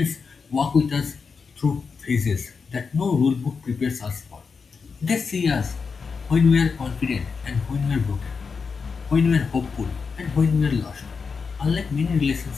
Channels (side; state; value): right; quieter; 5.3 dB